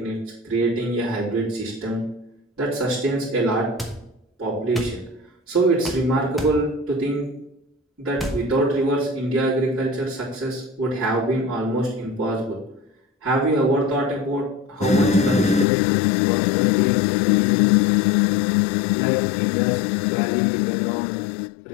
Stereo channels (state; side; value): drops out; right; at 15.7 s